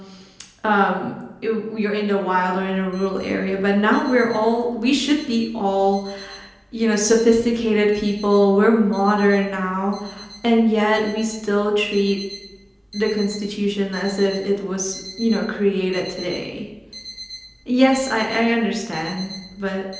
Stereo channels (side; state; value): both; identical; correlation 1.00